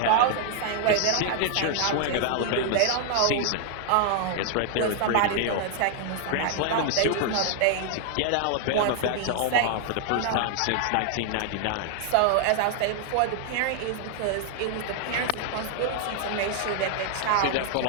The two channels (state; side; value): different; both; correlation 0.00